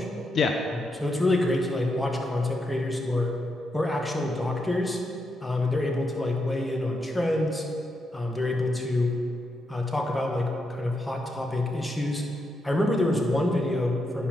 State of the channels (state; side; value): normal; both; correlation 0.82